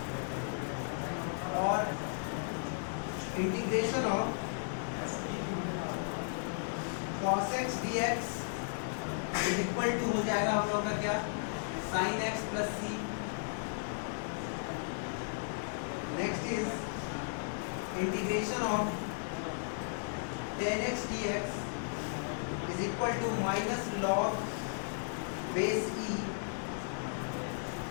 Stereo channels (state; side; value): silent; right; digital silence